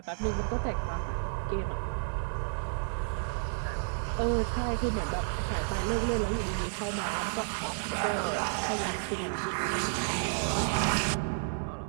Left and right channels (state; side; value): silent; left; 57 dB below the other